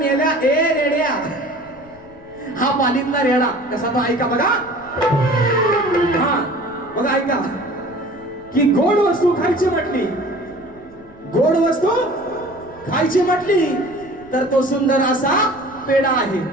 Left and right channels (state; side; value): noise; left; rumble, 25 dB below the sound